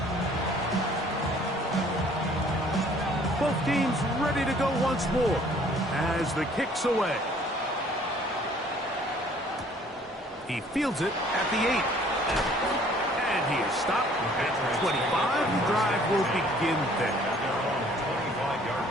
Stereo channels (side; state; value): both; normal; correlation 0.57